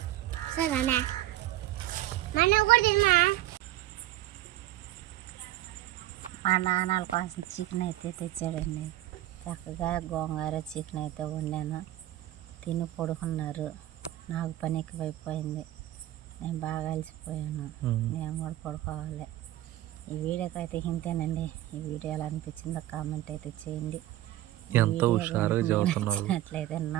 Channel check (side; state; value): left; quieter; 14.7 dB